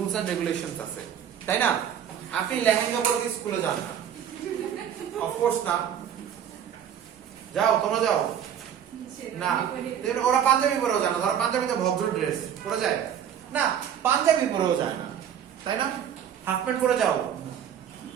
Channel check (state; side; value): quieter; left; 9.2 dB